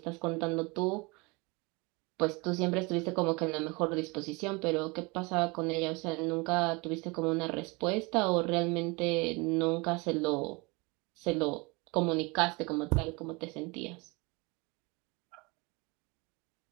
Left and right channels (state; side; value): quieter; left; 26.8 dB